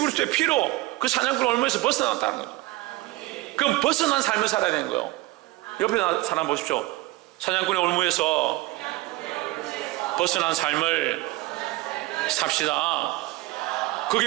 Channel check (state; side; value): quieter; left; 19.3 dB